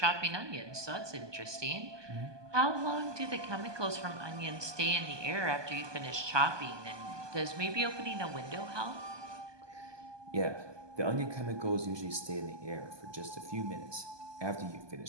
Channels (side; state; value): left; late; 1.2 ms